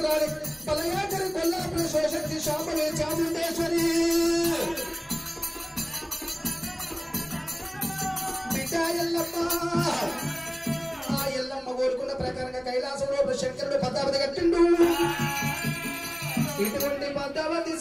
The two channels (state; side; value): identical; both; correlation 1.00